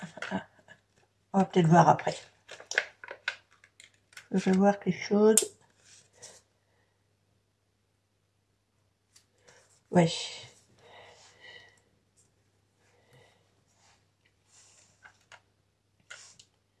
On va peut-être voir après. Je vais voir quelque chose. Ouais.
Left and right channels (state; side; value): identical; both; correlation 1.00